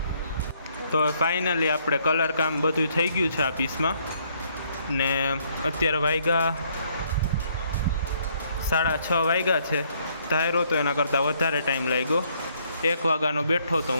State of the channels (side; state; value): both; inverted; correlation -0.67